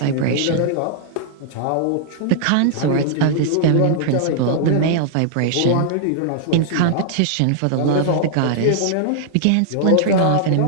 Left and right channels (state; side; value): different; both; correlation -0.01